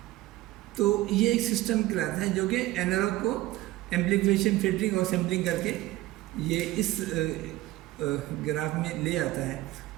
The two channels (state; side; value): quieter; left; 16.9 dB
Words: तो ये एक सिस्टम कहलाता है जो कि एनालॉग को एम्प्लीफिकेशन, फिल्टरिंग और सैम्पलिंग करके ये इस ग्राफ में ले आता है।